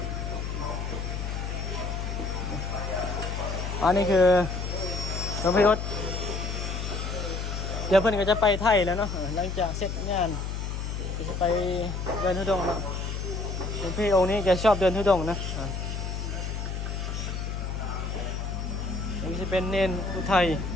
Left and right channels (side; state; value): left; noise; hum, 4 dB below the sound